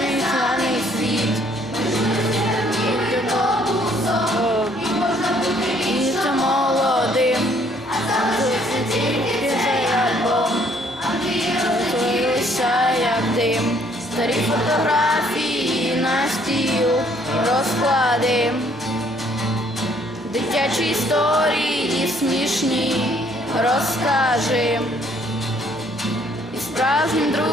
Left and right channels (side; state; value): right; noise; rumble, 29 dB below the sound